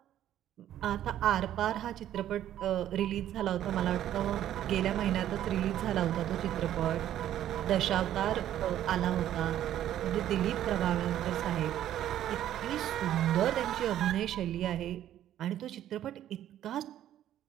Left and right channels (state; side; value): quieter; left; 11.8 dB